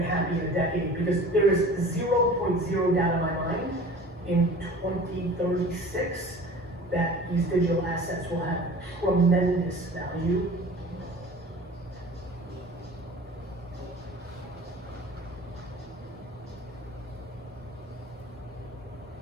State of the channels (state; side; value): normal; both; correlation 0.42